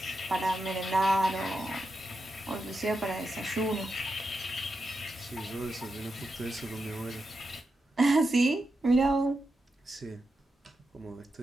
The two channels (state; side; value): normal; both; correlation 0.88